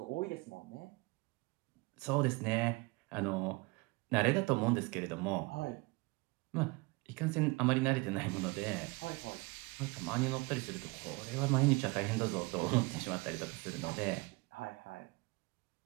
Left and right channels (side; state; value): left; quieter; 25.6 dB